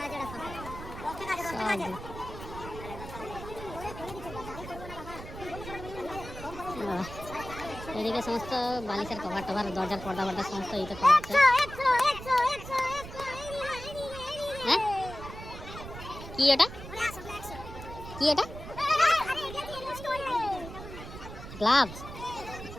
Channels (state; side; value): noise; right; rumble, 12 dB below the sound